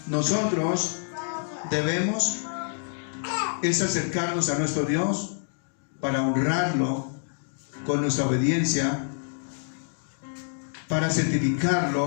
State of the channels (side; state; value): right; silent; digital silence